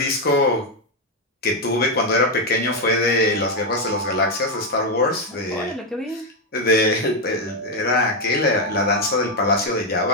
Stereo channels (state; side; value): normal; both; correlation 0.04